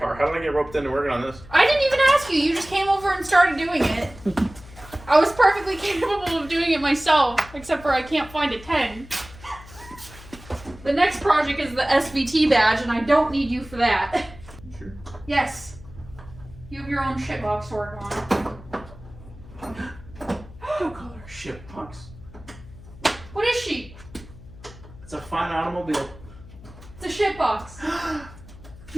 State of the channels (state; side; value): noise; left; hum, 19 dB below the sound